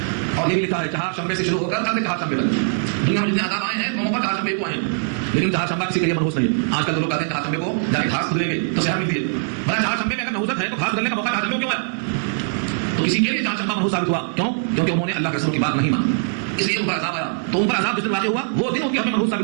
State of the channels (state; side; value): silent; left; 59 dB below the other